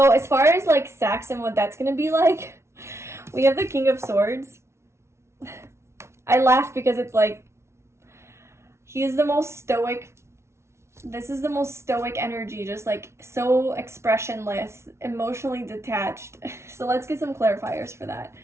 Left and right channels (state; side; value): late; left; 0.13 ms